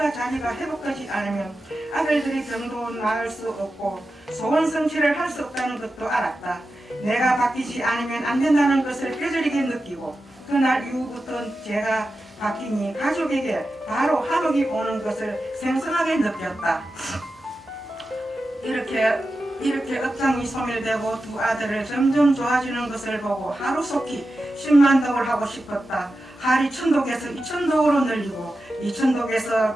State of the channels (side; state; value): both; normal; correlation 0.92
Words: 자비가 회복되지 않으면 아들들의 병도 나을 수 없고 소원 성취를 할 수 없다는 것도 알았다. 내가 바뀌지 않으면 안 된다는 것을 뼈저리게 느끼고 그날 이후부터 제가 바뀌니 가족에게 바로 화목이 오는 것을 생생하게 느꼈다. 이렇게 업장이 소멸되고 두 아들을 점점 좋아지는 것을 보고 하루속히 10만 독을 하고 싶었다. 할이 1000독에서 2000독으로 늘리고 2000독에서